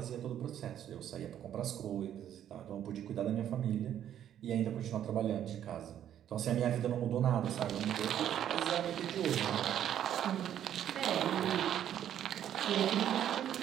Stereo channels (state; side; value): quieter; left; 10.5 dB